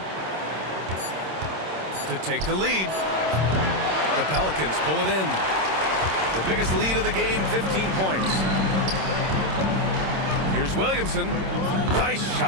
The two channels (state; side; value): late; left; 26 ms